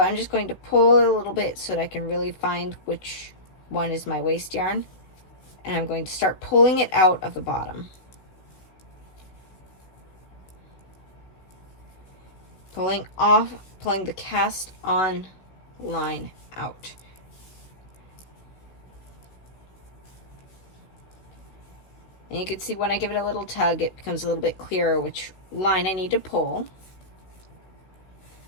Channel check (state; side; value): late; right; 15 ms